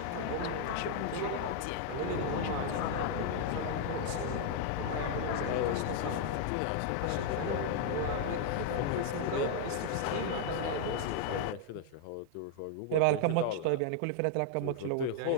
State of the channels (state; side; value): different; both; correlation 0.00